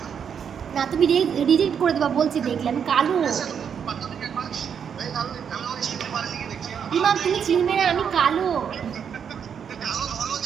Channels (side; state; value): left; quieter; 7.5 dB